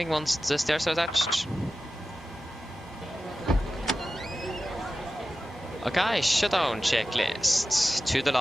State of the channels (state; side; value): normal; both; correlation 0.94